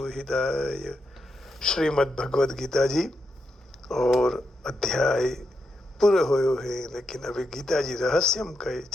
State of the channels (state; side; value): normal; both; correlation 0.84